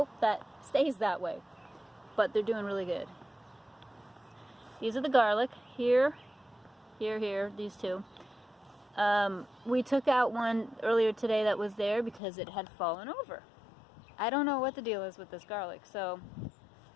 that stays that way. But they're doing really good. These are the garlic. Here, these two. We took out one earlier today that was there because it had fallen over. I don't know what the deal is with this garlic, so...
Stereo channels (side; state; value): right; drops out; at 12.2 s